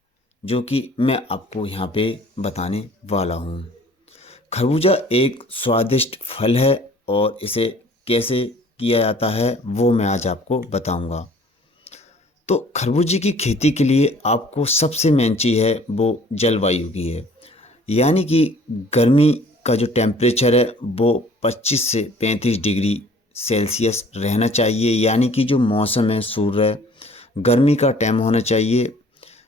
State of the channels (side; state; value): both; normal; correlation 0.53